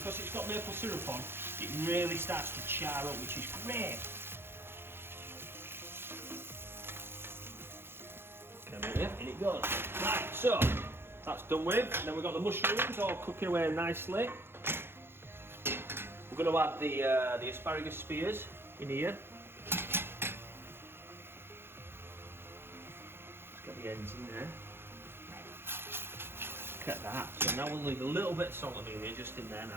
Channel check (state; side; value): late; left; 0.11 ms